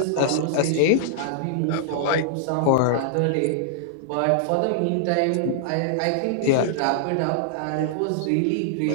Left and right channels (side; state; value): both; different; correlation -0.01